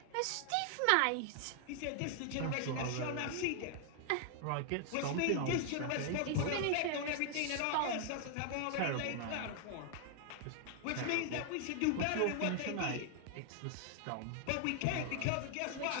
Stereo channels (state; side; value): different; both; correlation 0.00